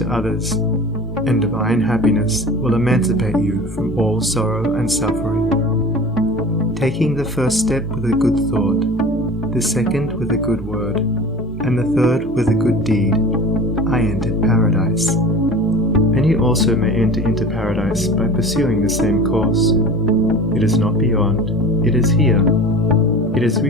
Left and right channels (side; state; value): both; normal; correlation 0.38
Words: others, and divine happiness will emancipate you from all sorrow and suffering. Taking the first step with a good thought, the second with a good word, and the third with a good deed, I entered paradise. And you also may enter into paradise by pursuing the same course. It is not beyond, it is here. It is